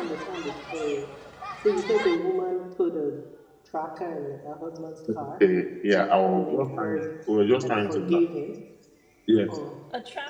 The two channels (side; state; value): both; identical; correlation 1.00